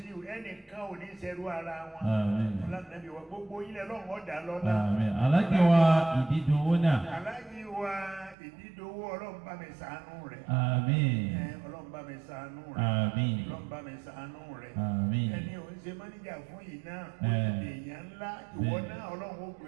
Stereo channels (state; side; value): drops out; left; at 8.3 s